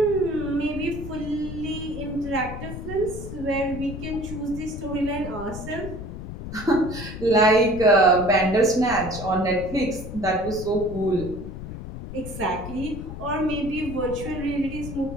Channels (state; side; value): noise; left; rumble, 9 dB below the sound